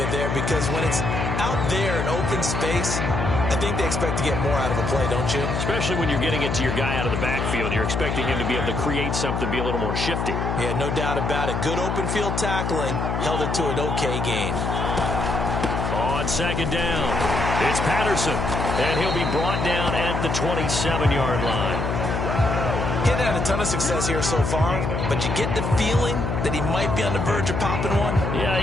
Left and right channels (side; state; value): left; noise; hum, 1 dB below the sound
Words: there because when it's out there in open space, I think they expect to get more out of a play, don't you? Especially when you're getting it to your guy out of the backfield. You're expecting him to be able to create something, be a little more shifty. Yeah, no doubt about it. Good open field tackling held it to an okay gain. On second down, it's Patterson, and he'll be brought down at the 27-yard line. He hasn't had a ton of success here so far, but you get the feeling that he might be on the verge of popping one.